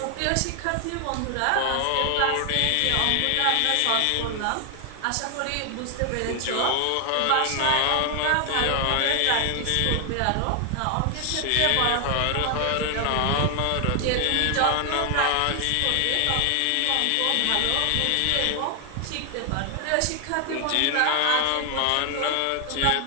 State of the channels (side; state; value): both; different; correlation 0.00